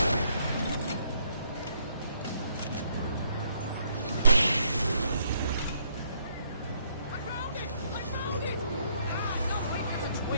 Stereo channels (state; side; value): inverted; both; correlation -0.69